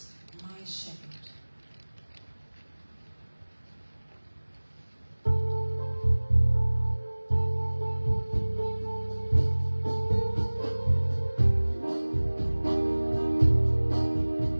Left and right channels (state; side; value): inverted; both; correlation -1.00